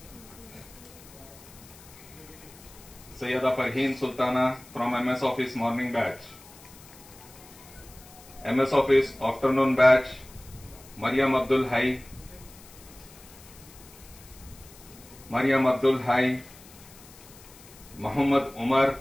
Sayyida Farheen Sultana from MS Office morning batch. MS Office afternoon batch, Maryam Abdul Hai, Maryam Abdul Hai, Muhammad Umar,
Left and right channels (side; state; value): left; noise; hiss, 21 dB below the sound